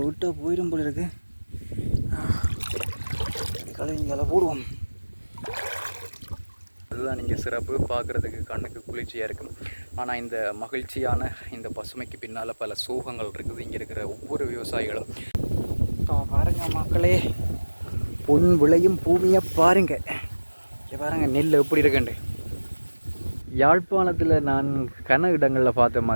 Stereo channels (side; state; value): both; inverted; correlation -1.00